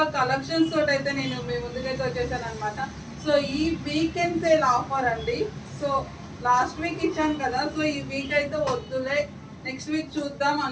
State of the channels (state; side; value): identical; both; correlation 1.00